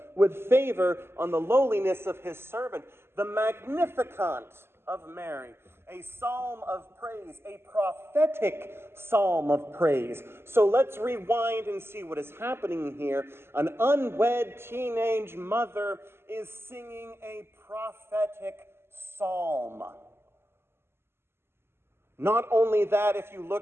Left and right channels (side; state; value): left; late; 0.12 ms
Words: with favor on the lowliness of his servant. The Magnificat of Mary, a psalm of praise, a prophetic psalm of praise. So let's rewind and see what is happening here. An unwed teenage mother is singing a prophetic psalm. Not only that, if you